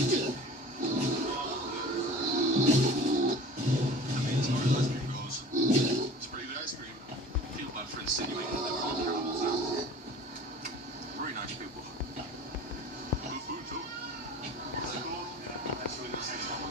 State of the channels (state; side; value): normal; both; correlation 0.42